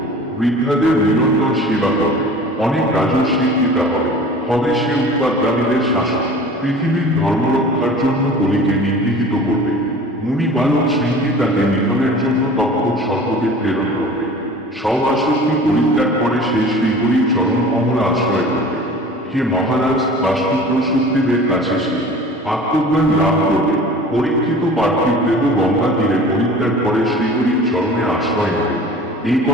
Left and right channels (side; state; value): both; normal; correlation 0.42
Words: বৃদ্ধাদের নিরন্তর সেবা করবে, অনেক রাজস্বীর পিতা হবে, হবে সে উৎপাদকারীদের শাসক, পৃথিবীর ধর্মরক্ষার জন্য কলিকে নিগৃহীত করবে। মুনি বালক শৃঙ্গী তাকে নিধনের জন্য তক্ষক সর্পকে প্রেরণ করবে। সব আসক্তি পরিত্যাগ করে সে শ্রীহরির চরণ কমল আশ্রয় করবে। হে মহারাজ, বাস্তুপুত্র শুকদেবের কাছে সে আত্মজ্ঞান লাভ করবে। পরীক্ষিত পার্থিব দেহ গঙ্গা তীরে পরিত্যাগ করে শ্রীহরির চরণে আশ্রয় নেবে। এই